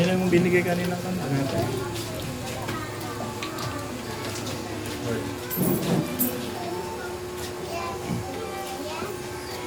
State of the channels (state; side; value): identical; both; correlation 1.00